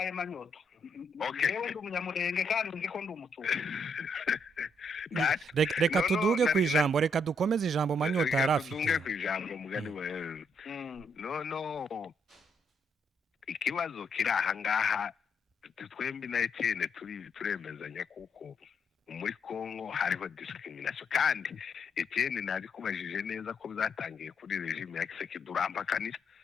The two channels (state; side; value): normal; both; correlation 0.75